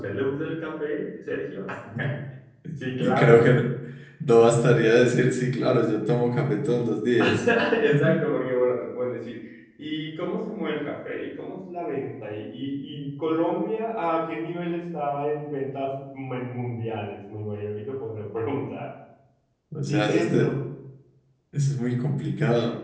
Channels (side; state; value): both; identical; correlation 1.00